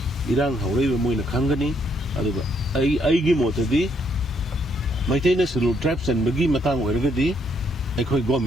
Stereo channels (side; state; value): both; normal; correlation 0.72